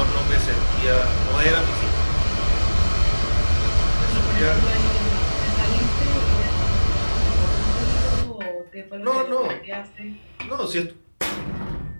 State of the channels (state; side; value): inverted; both; correlation -1.00